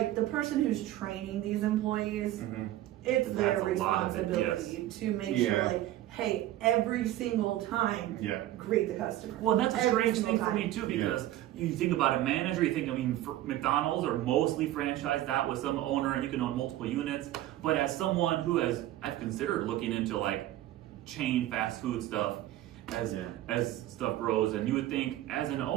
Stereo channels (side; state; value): left; quieter; 14.2 dB